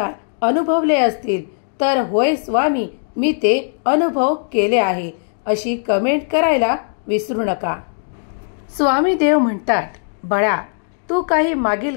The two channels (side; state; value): right; silent; digital silence